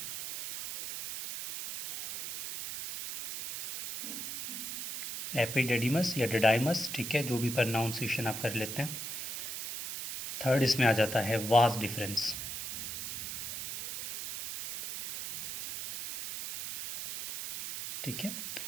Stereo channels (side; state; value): right; noise; hiss, 6 dB below the sound